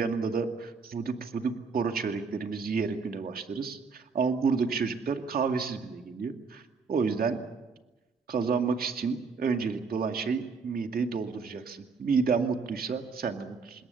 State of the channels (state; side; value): quieter; left; 4.9 dB